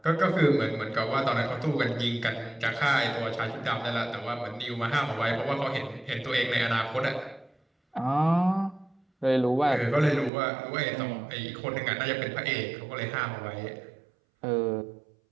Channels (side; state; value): left; drops out; at 10.3 s